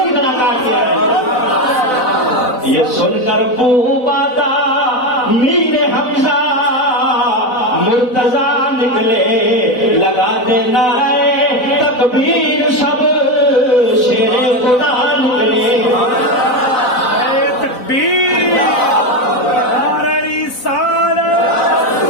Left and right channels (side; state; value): right; late; 4.0 ms